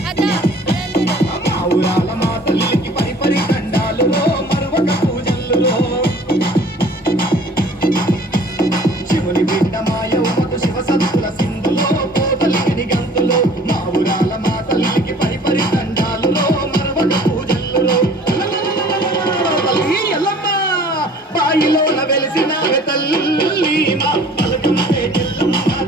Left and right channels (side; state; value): both; normal; correlation 0.50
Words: మా ఊరాల మా తల్లికి పరిపరి దండాలులో మరువక పూజల్లో శివుని బిడ్డ మా యౌవకు శివ శక్తుల సింధులో కోతలిని గంతులో మా ఊరాల మా తల్లికి పరిపరి దండాలులో మరువక పూజల్లో తల్లి ఎల్లమ్మ బాయిలోన వెలిసిన తల్లి మా పలకం ఎల్లమ్మ